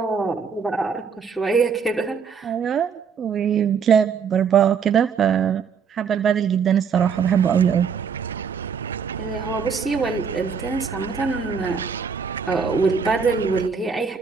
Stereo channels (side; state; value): left; quieter; 6.3 dB